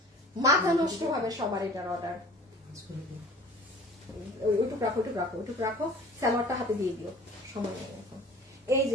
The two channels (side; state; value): both; normal; correlation 0.45